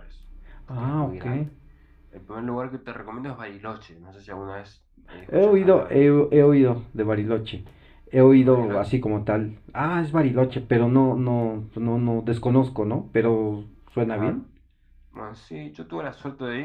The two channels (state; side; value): identical; both; correlation 1.00